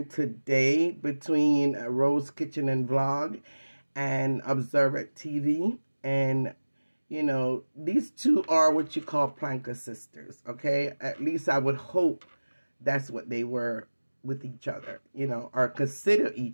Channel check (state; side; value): inverted; both; correlation -1.00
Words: today between Rose Kitchen and Vlog and Observant TV, and these two are what you call planker sisters, okay? At least I would hope that's what they were with each other, or consider